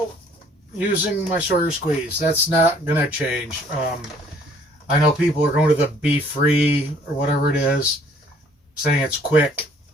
using my Sawyer Squeeze. That's not going to change. I know people are going to the Be Free or whatever it is, saying it's quick.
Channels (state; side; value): normal; both; correlation 0.59